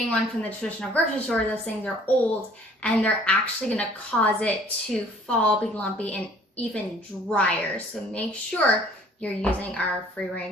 one from the traditional grocery store, those things are old and they're actually gonna cause it to fall, be lumpy, and even drier. So make sure you're using our free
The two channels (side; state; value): both; normal; correlation 0.56